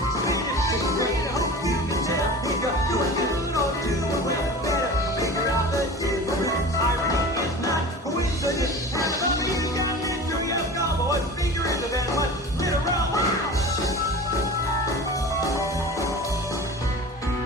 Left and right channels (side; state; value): both; normal; correlation 0.36